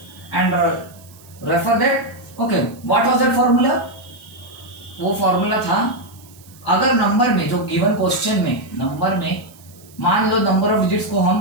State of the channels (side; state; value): right; noise; hiss, 24 dB below the sound